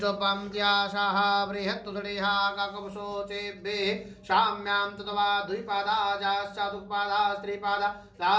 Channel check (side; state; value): both; identical; correlation 1.00